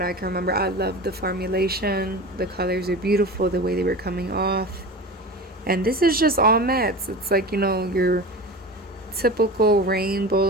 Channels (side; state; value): both; normal; correlation 0.31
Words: I can remember, I love the formulation. The colors are beautiful, the way they were coming off. And this is just all mattes. It's like, you know, your typical